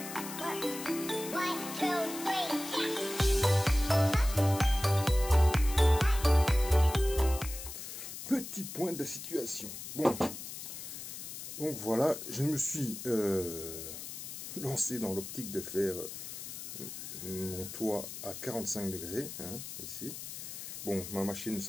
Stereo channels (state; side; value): noise; left; hiss, 9 dB below the sound